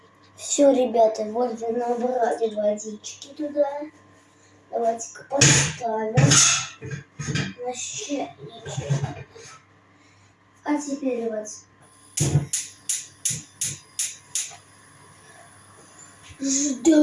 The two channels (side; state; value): both; identical; correlation 1.00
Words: Все, ребята, вот вы набрали водички туда. Давайте-ка поставим на чайничек. А теперь давайте